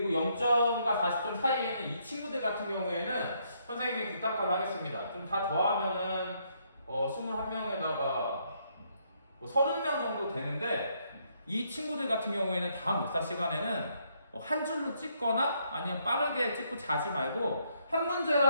0점과 40점 사이에 있는 이 친구들 같은 경우에는 선생님이 부탁을 하겠습니다. 좀 다 더하면은 21명에다가 30명 정도 되는데 이 친구들 같은 경우에는 다음 목사 시간에는 한 줄로 찍거나 아니면 빠르게 찍고 자지 말고 한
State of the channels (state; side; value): inverted; both; correlation -0.72